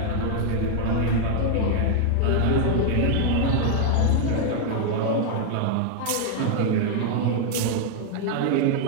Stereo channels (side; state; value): both; different; correlation 0.00